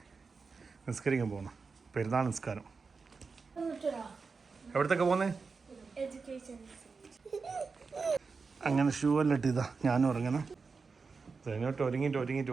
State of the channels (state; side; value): quieter; left; 4.7 dB